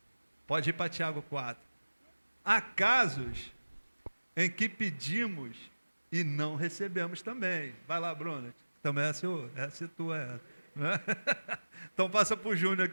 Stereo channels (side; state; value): both; inverted; correlation -1.00